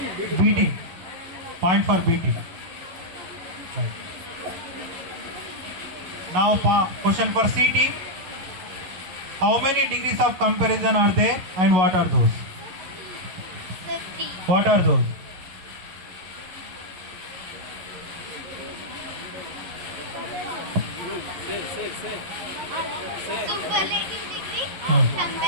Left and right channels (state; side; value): late; left; 11 ms